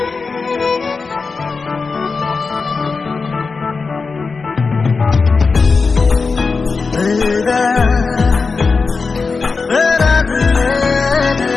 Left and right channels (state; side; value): quieter; right; 4.5 dB